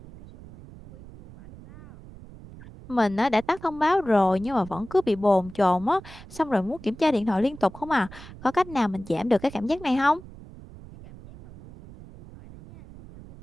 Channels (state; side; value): noise; right; rumble, 18 dB below the sound